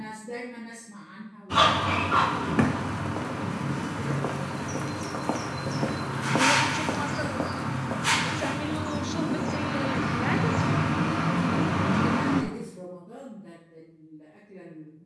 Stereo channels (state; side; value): identical; both; correlation 1.00